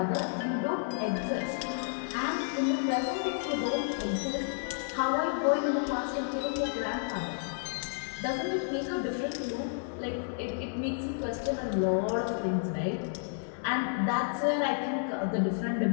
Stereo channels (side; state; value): right; silent; digital silence